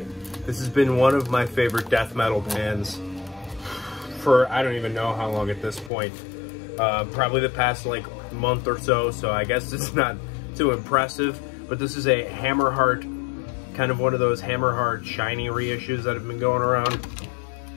This has been one of my favorite death metal bands for I don't even know how long at this point. Probably the past like month or so, so I guess it's not too impressive. But this is a Hammerheart, kind of one of those Hammerheart shiny reissues that have been going around.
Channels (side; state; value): right; drops out; at 5.9 s